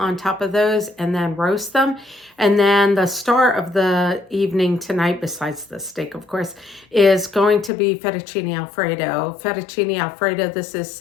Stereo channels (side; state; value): right; drops out; at 7.7 s